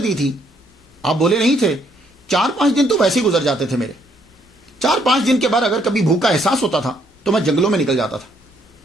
تھی، آپ بولے نہیں تھے. 4-5 دن تو ویسے ہی گزر جاتے تھے میرے. 4-5 دن کے بعد اگر کبھی بھوک کا احساس ہوتا تھا تو میں جنگلوں میں نکل جاتا تھا.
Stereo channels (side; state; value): both; normal; correlation 0.70